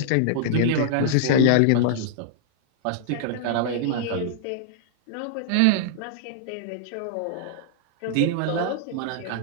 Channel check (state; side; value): different; both; correlation -0.01